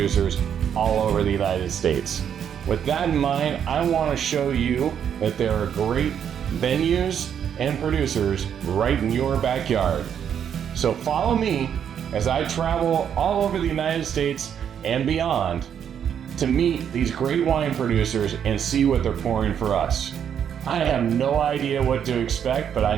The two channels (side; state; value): left; quieter; 8.6 dB